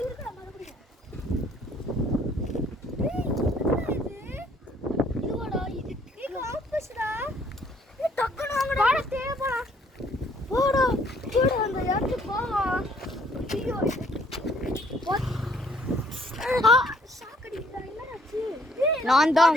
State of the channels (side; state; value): both; normal; correlation 0.63